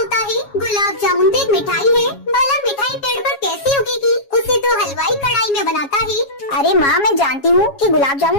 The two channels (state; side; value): late; right; 7.2 ms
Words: है। गुलाब जामुन तो एक मिठाई है, भला मिठाई पेड़ पर कैसे उगेगी? उसे तो हलवाई कढ़ाई में बनाता है। अरे माँ, मैं जानती हूँ कि गुलाब